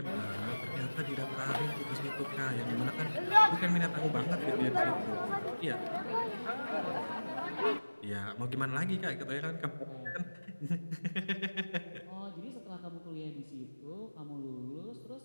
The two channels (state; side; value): inverted; both; correlation -1.00